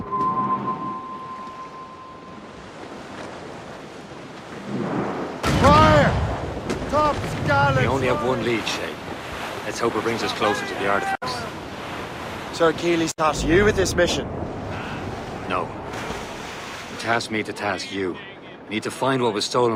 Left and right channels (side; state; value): both; identical; correlation 1.00